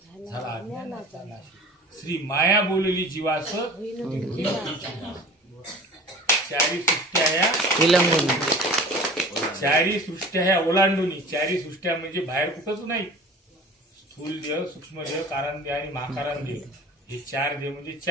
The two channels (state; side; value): normal; both; correlation 0.42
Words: अज्ञानाचा नाश, श्री माया बोलली जीवास, चारी सृष्ट्या ह्या विलंबून चारी सृष्ट्या ह्या ओलांडून, चारी सृष्ट्या म्हणजे बाहेर कुठंच नाही, स्थूल देह, सूक्ष्म देह, कारण देह आणि महाकारण देह, हे चार देह म्हणजे